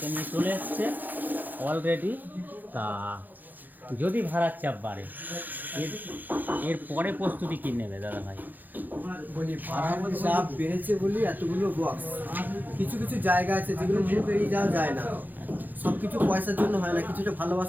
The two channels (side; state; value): left; late; 0.085 ms